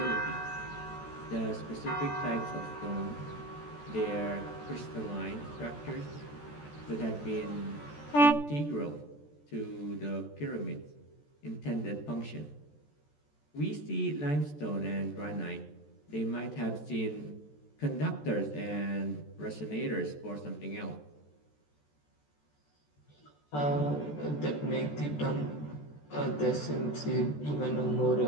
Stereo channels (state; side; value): late; right; 14 ms